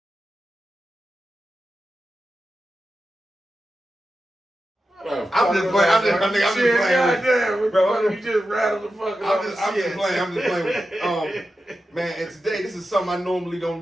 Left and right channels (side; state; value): both; normal; correlation 0.91